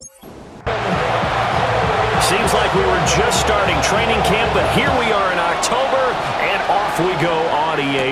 seems like we were just starting training camp, but here we are in October, and off we go on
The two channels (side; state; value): both; identical; correlation 1.00